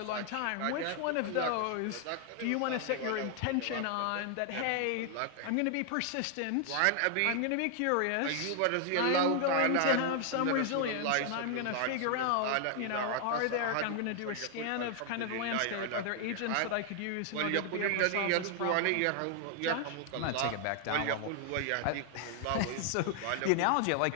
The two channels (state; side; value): different; both; correlation 0.00